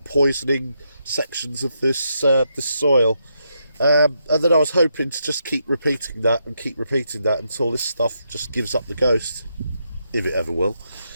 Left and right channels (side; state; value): both; inverted; correlation -0.81